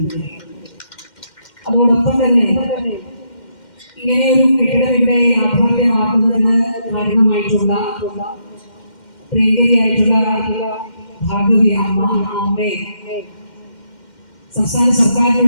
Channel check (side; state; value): right; late; 2.1 ms